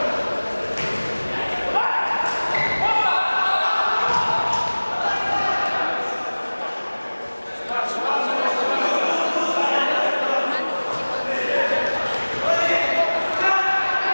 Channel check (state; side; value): inverted; both; correlation -1.00